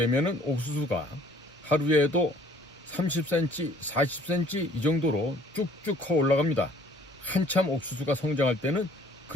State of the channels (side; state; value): both; normal; correlation 0.57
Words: 옥수수가 하루에도 30cm, 40cm 이 정도로 쭉쭉 커 올라갑니다. 한참 옥수수가 성장할 때는